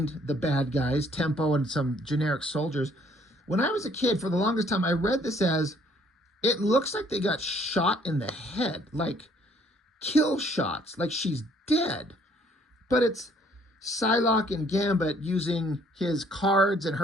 the bad guys, Tempo and some generic soldiers. When I was a kid, for the longest time, I read this as, it looks like they got shot in the head, like kill shots, like she's dead. But it's Psylocke and Gambit using his cards and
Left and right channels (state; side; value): normal; both; correlation 0.62